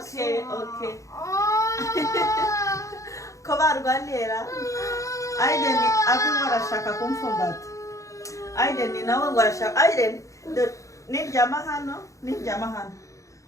Kova argaliera. Aiden ni abi wara shaka kumfumbat. Aiden ni nawe wara shaka. Aiden, ni jamahano.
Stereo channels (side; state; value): right; late; 0.15 ms